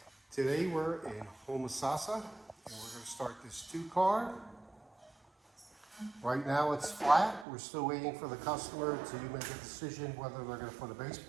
Today we're in Homosassa and we're going to start this 2-car. Right now it's flat. We're still waiting for the customer to make a decision whether they're going to put a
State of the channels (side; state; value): left; drops out; at 7.5 s